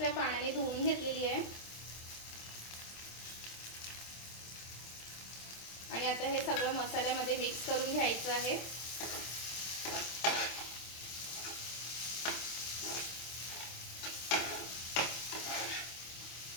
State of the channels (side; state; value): right; late; 26 ms